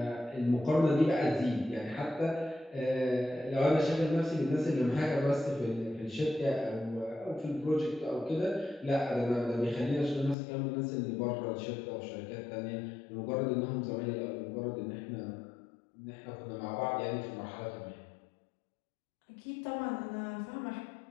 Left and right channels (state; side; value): drops out; right; at 10.4 s